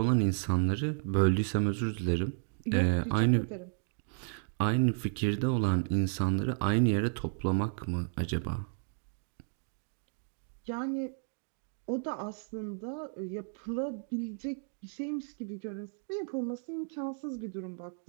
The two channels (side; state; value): left; silent; 56 dB below the other